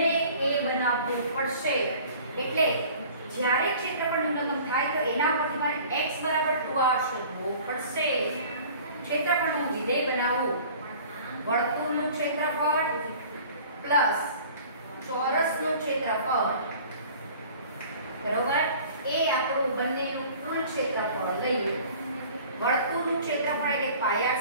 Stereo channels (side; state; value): both; inverted; correlation -0.47